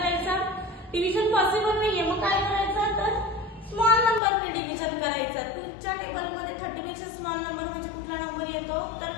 डिव्हिजन पॉसिबल नाहीये. मग काय करायचं, तर स्मॉल नंबरने डिव्हिजन करायचं. तुमच्या टेबलमध्ये 30 पेक्षा स्मॉल नंबर म्हणजे कुठला नंबर येतो, तर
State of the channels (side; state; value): right; drops out; at 4.2 s